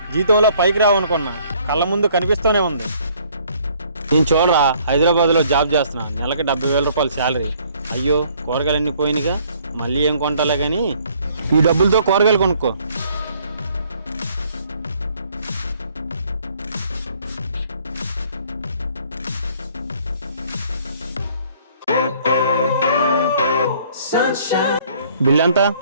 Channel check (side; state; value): both; inverted; correlation -0.61